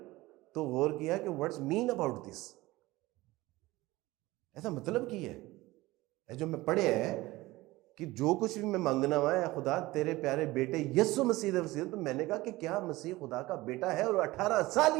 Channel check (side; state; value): left; quieter; 19.4 dB